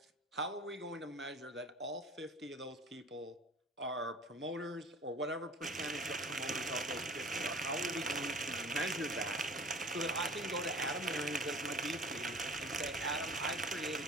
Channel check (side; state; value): both; normal; correlation 0.45